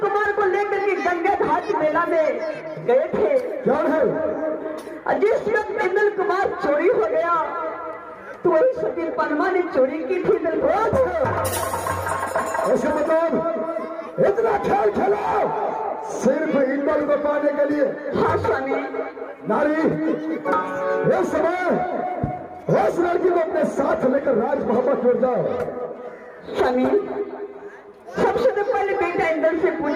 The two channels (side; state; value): both; identical; correlation 1.00